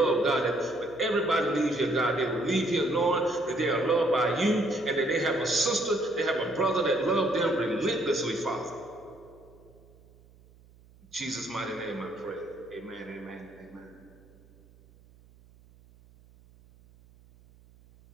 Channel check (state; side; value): noise; right; hum, 27 dB below the sound